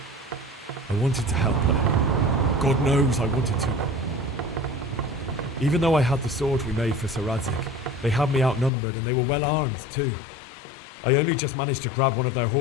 I wanted to help her. God knows I wanted to. Even though I had the sword we made for Sir Radzig, they had me outnumbered and they were well armed too. I only just managed to grab one of their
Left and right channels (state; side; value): drops out; right; at 8.7 s